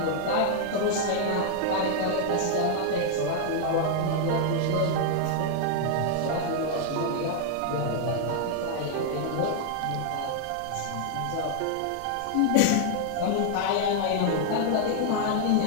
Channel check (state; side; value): different; both; correlation 0.00